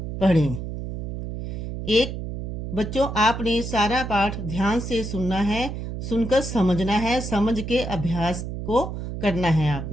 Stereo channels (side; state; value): right; noise; hum, 6 dB below the sound